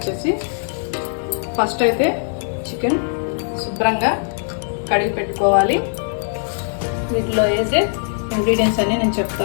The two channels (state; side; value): silent; right; 65 dB below the other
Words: ఫస్ట్ అయితే చికెన్ శుభ్రంగా కడిగి పెట్టుకోవాలి. వీటిలో వేసే ఇంగ్రీడియంట్స్ అన్నీ నేను